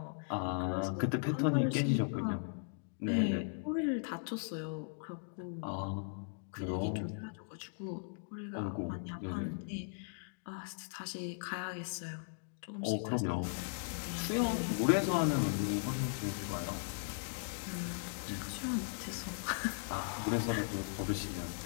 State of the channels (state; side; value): silent; right; digital silence